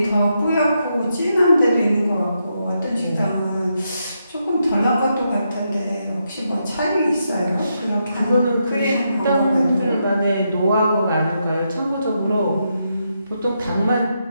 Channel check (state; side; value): inverted; both; correlation -0.82